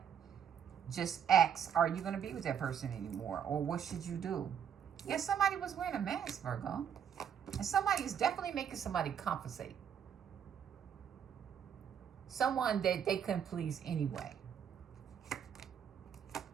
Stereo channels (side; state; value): left; quieter; 8.3 dB